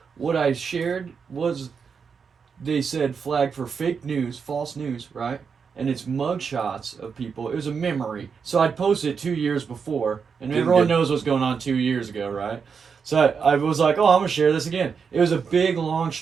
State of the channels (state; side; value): quieter; left; 6.0 dB